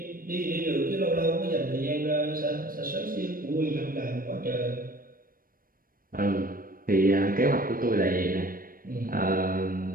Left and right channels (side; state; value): left; late; 0.41 ms